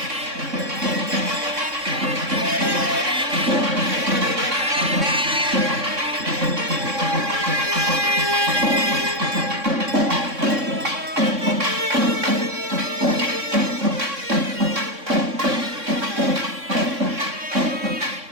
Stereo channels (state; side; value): late; left; 3.6 ms